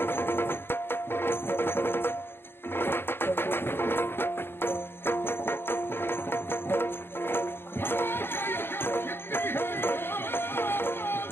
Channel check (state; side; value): late; right; 0.11 ms